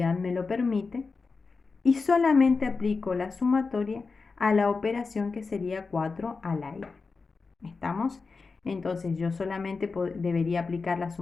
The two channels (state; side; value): quieter; right; 4.4 dB